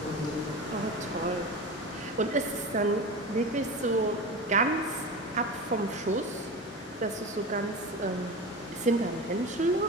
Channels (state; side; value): normal; both; correlation 0.28